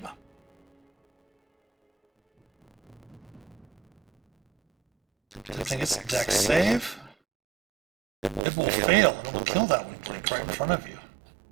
I think it's a dex save. It will fail. It will kill that one, Blink, right in front of you.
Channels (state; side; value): drops out; left; at 8.4 s